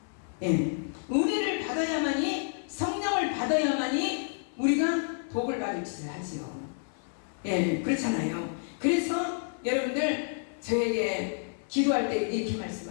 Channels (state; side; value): silent; right; 58 dB below the other